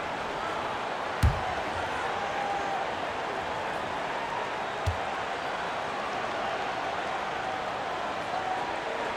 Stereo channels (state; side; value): identical; both; correlation 1.00